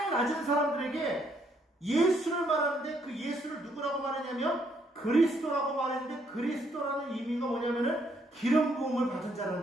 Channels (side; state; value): both; normal; correlation 0.71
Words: 낮은 사람들에게 예수를 말하는데 그 예수를 누구라고 말하냐면 그리스도라고 말했는데 그리스도라는 의미가 뭐냐면은 기름 부음을 받은